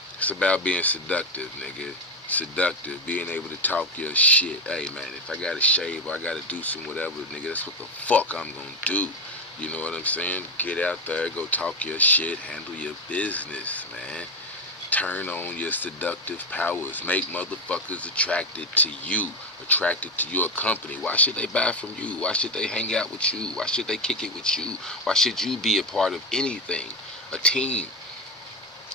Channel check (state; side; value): normal; both; correlation 0.13